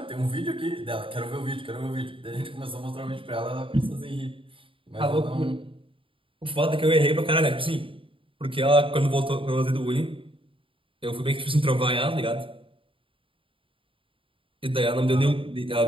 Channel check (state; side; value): late; left; 0.25 ms